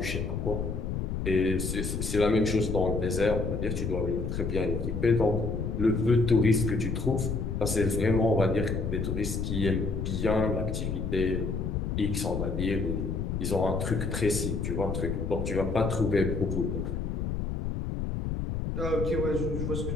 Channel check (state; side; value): noise; left; rumble, 2 dB below the sound